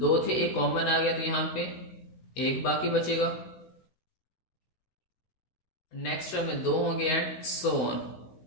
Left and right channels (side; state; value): right; late; 16 ms